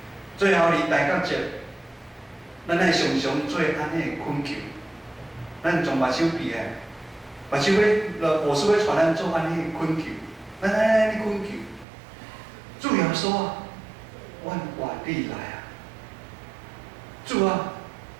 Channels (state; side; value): drops out; left; at 11.9 s